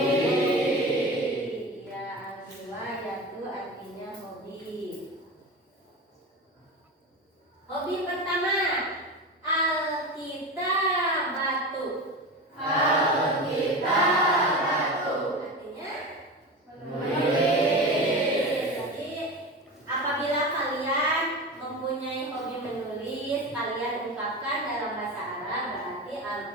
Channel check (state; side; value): normal; both; correlation 0.26